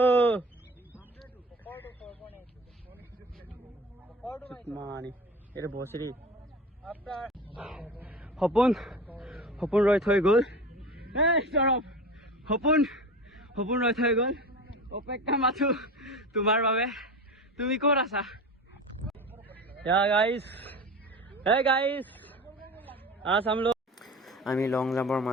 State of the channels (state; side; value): normal; both; correlation 0.32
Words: mani এটা বসরি হপন রয় থৈ গল এই সরব হপন রয় থৈ গল অপেক্ষা মাথু তোমার বাবে তুমি কোন আছা yeah guys hey guys आज हम लोग আমি লং জাম্পৰ